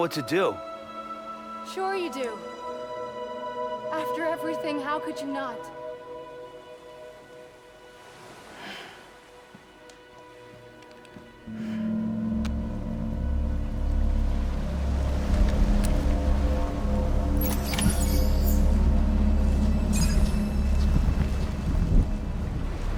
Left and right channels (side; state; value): both; identical; correlation 1.00